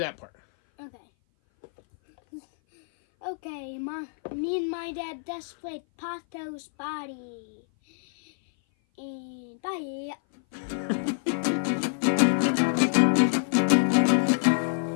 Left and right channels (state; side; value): silent; right; 57 dB below the other